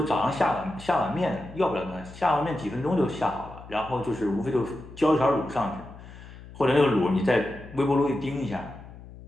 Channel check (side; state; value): left; noise; hum, 17 dB below the sound